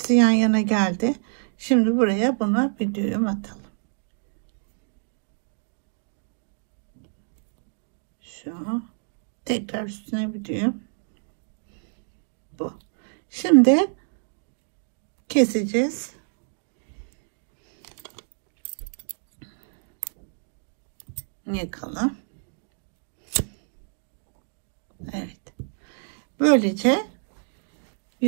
yan yana geldi. Şimdi buraya buna bir düğüm atalım. Şu. Tekrar üstüne bir düğüm. Bu. Şimdi keseceğiz. Yakalım. Evet. Böylece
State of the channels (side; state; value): left; silent; 60 dB below the other